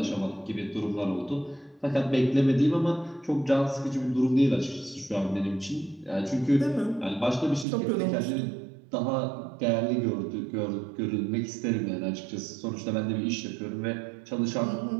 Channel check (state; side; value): drops out; left; at 7.7 s